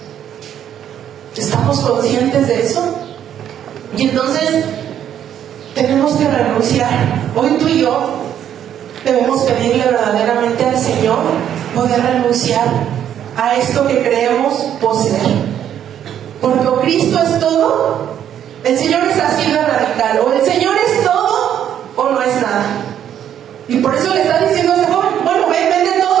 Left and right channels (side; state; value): left; quieter; 10.0 dB